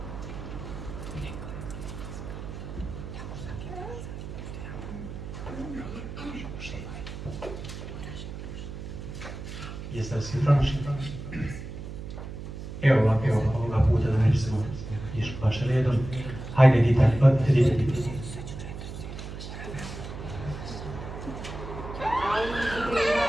Jeste li svi pronašli? Evo ovako, ovoga puta da nećemo išli baš redom. Hajde, dite.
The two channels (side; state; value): right; noise; hum, 9 dB below the sound